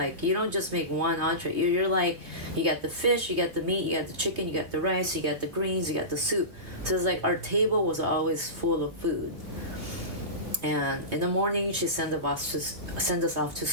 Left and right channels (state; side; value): late; left; 3.2 ms